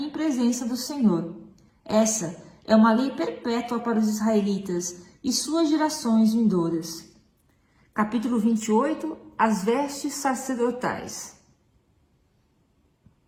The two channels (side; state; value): both; identical; correlation 1.00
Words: presença do Senhor. Essa é uma lei perpétua para os israelitas e suas gerações vindouras. Capítulo 28. As vestes sacerdotais.